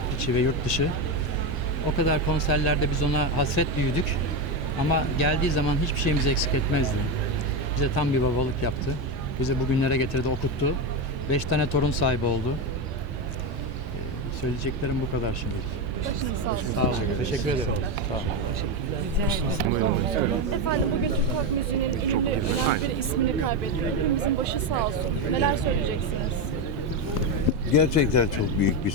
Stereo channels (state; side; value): normal; both; correlation 0.12